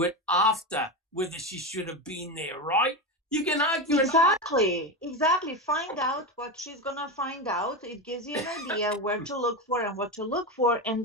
it after whether she should have been there, right? You can argue exactly. Find out what she's gonna find out. It gives you an idea where to look for and what to look for,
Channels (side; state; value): both; normal; correlation 0.17